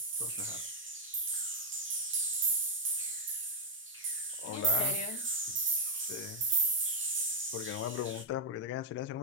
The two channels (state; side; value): normal; both; correlation -0.03